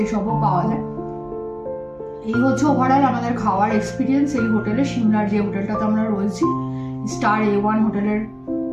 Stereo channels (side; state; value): both; identical; correlation 1.00